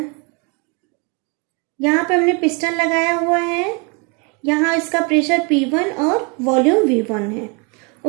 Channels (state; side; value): quieter; left; 32.6 dB